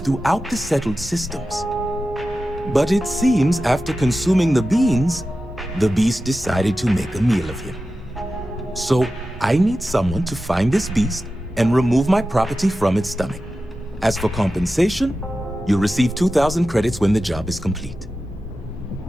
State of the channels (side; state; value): both; normal; correlation 0.93